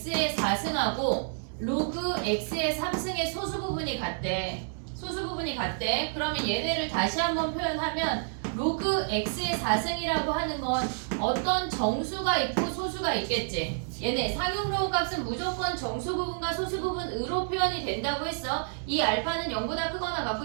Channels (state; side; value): silent; left; digital silence